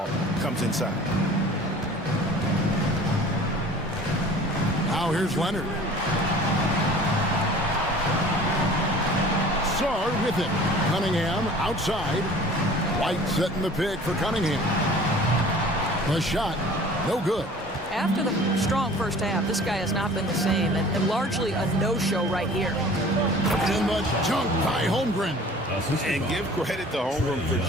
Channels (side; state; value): both; normal; correlation 0.46